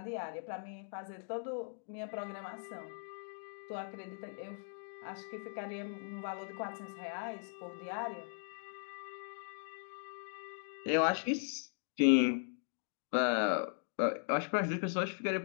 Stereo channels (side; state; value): right; silent; digital silence